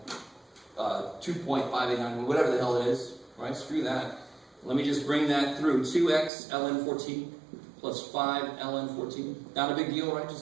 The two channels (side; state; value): left; drops out; at 6.3 s